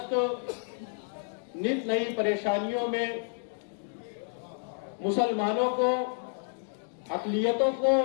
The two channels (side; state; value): right; silent; 58 dB below the other